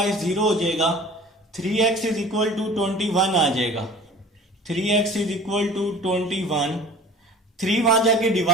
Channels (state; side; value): normal; both; correlation 0.44